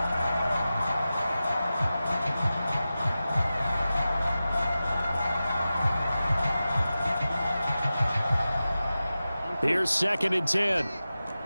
Here's 2nd and 10.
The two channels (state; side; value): inverted; both; correlation -0.94